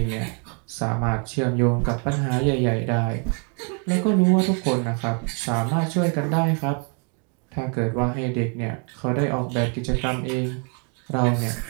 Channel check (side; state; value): left; quieter; 38.3 dB